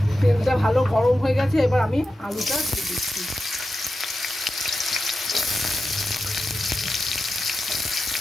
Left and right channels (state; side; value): normal; both; correlation 0.90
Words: তেলটা ভালো গরম হয়ে গেছে, এবার আমি আলুটা দিয়ে দিচ্ছি।